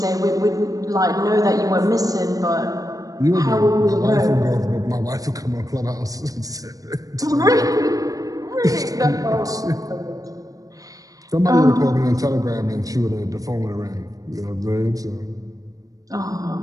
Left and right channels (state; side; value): late; left; 0.17 ms